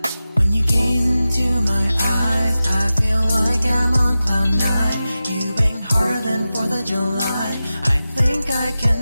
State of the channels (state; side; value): inverted; both; correlation -0.94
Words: When you gaze into my eyes, I feel like I'm on cloud nine. You bang harder than 4th of July. I think I can